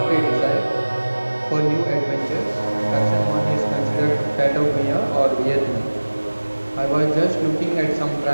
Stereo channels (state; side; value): inverted; both; correlation -1.00